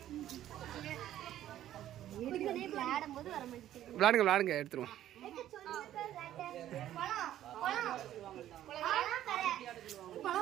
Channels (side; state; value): left; quieter; 12.4 dB